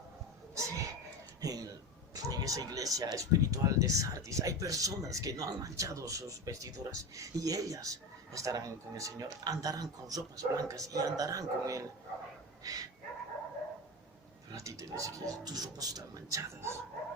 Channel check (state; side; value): normal; both; correlation 0.23